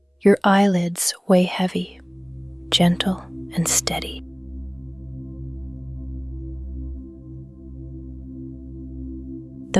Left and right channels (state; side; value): identical; both; correlation 1.00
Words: Your eyelids weigh heavy, gentle and steady.